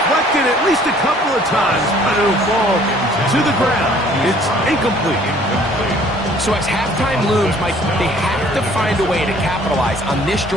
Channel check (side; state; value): both; normal; correlation 0.56